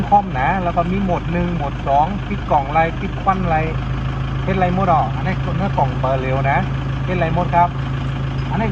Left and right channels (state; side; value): identical; both; correlation 1.00